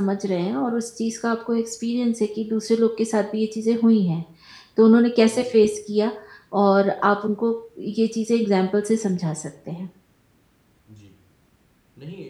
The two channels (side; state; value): both; identical; correlation 1.00